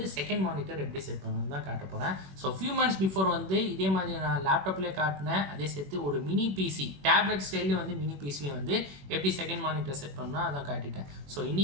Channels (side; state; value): left; late; 21 ms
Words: செகண்ட் மானிட்டர் எப்படி செட் பண்ணனும் தான் காட்ட போறேன். சோ few months before வந்து இதே மாதிரி நான் லேப்டாப்லயே காட்டினேன். அதே சேர்த்து ஒரு மினி பிசி டேப்லெட் ஸ்டைல்ல வந்து மினி பிசில வந்து எப்படி செகண்ட் மானிட்டர் செட் பண்ணனும் அத காட்டிட்டேன். சோ